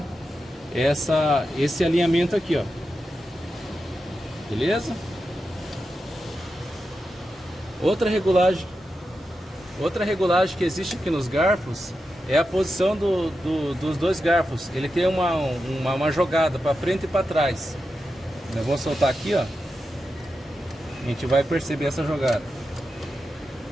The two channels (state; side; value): normal; both; correlation 0.89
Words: esse alinhamento aqui, ó. Beleza? Outra regulagem que existe aqui nos garfos é a posição dos dois garfos. Ele tem uma jogada para frente e para trás. Eu vou soltar aqui, ó. A gente vai perceber essa jogada.